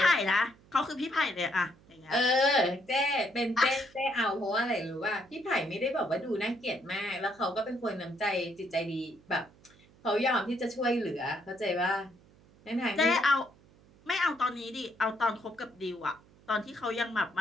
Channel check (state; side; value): noise; right; hum, 27 dB below the sound